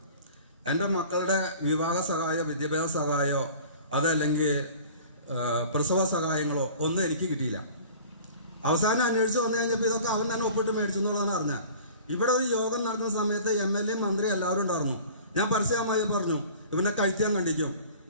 എൻ്റെ മക്കളുടെ വിവാഹ സഹായോ വിദ്യാഭ്യാസ സഹായോ അതല്ലെങ്കിൽ പ്രസവ സഹായങ്ങളോ ഒന്നും എനിക്ക് കിട്ടിയില്ല. അവസാനം അന്വേഷിച്ച് വന്നു കഴിഞ്ഞപ്പോൾ ഇതൊക്കെ അവൻ തന്നെ ഒപ്പിട്ട് മേടിച്ചു എന്നുള്ളതാണ് അറിഞ്ഞത്. ഇവിടെ ഒരു യോഗം നടക്കുന്ന സമയത്ത് MLA മന്ത്രി എല്ലാവരും ഉണ്ടായിരുന്നു. ഞാൻ പരസ്യമായി പറഞ്ഞു, ഇവനെ കഴിക്കാൻ കണ്ടിക്കും,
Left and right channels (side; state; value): both; inverted; correlation -0.44